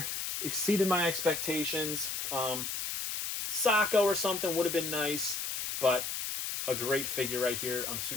Exceeded my expectations. Sacco or something would have been nice, but a great figure right here. I'm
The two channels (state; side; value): noise; left; hiss, 3 dB below the sound